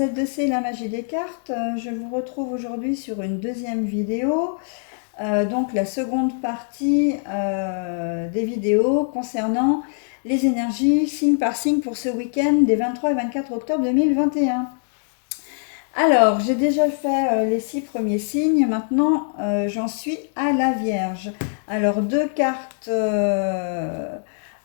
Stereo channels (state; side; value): silent; right; 64 dB below the other